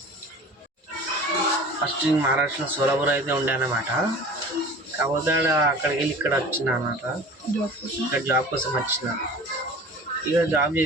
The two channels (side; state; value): both; normal; correlation 0.41